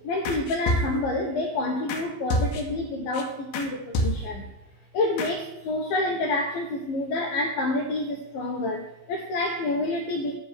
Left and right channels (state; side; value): late; right; 15 ms